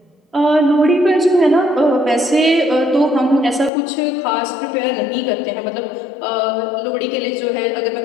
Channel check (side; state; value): right; drops out; at 3.7 s